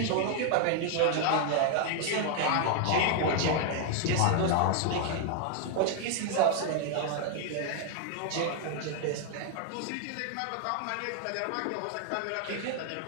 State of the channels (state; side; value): different; both; correlation 0.00